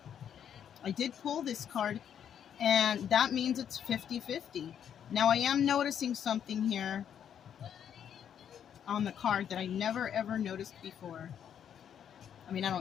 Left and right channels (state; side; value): quieter; right; 8.9 dB